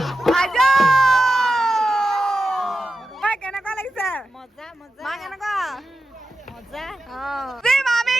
কেনেকুৱা লাগিছে মজা মজা মা কেনেকুৱা মজা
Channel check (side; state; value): both; normal; correlation 0.89